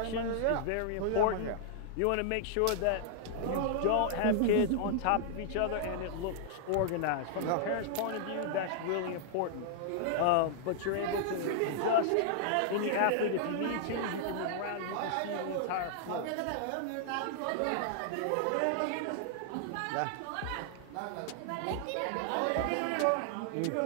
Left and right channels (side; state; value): both; different; correlation -0.01